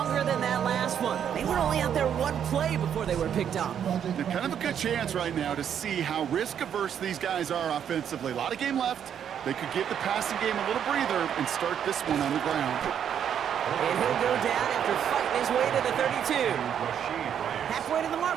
than that last one. They were only out there one play before they were picked up. They're kind of a good chance right now to see how risk-averse these guys are offensively. A lot of game left. They could give the passing game a little breather and start this one on the ground. And he'll go down after fighting his way to the 32. Halfway to the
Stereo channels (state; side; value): quieter; left; 8.8 dB